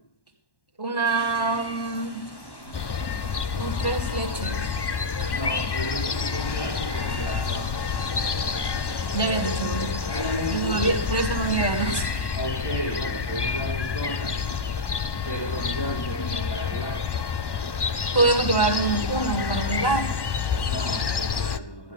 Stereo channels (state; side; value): late; right; 1.1 ms